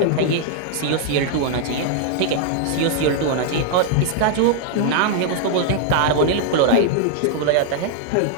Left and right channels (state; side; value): different; both; correlation -0.01